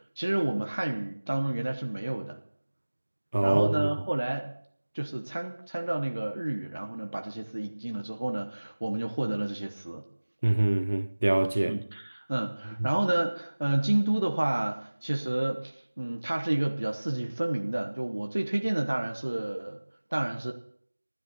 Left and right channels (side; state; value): both; inverted; correlation -1.00